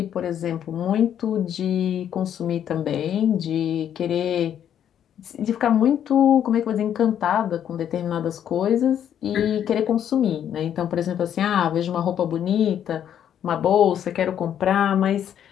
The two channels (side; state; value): right; quieter; 9.7 dB